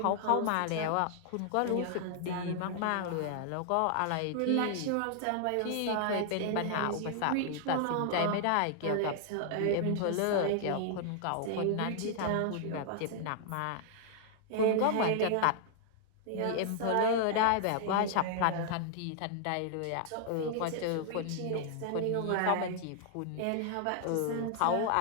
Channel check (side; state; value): both; different; correlation 0.00